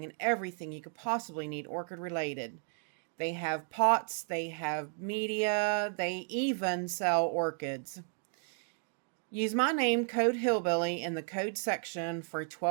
and everything you could possibly need orchid related. They have pots, they have media, they even sell orchids. Use my name, code Hillbilly, in the code section for a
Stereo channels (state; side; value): silent; left; 55 dB below the other